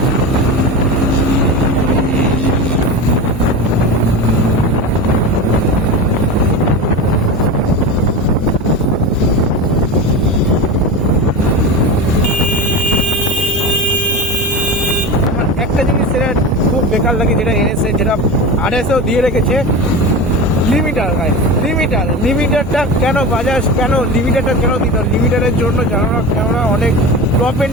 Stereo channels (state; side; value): normal; both; correlation 0.26